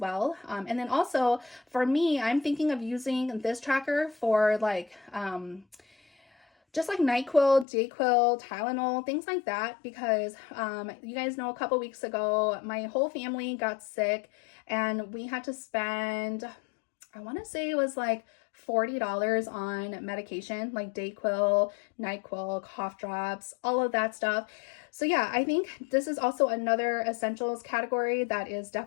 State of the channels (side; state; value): right; drops out; at 7.7 s